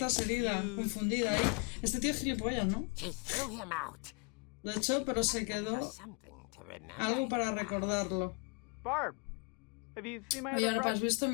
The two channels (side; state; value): right; quieter; 33.2 dB